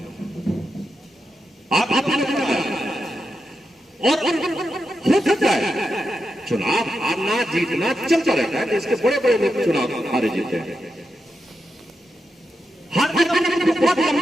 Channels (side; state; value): both; normal; correlation 0.87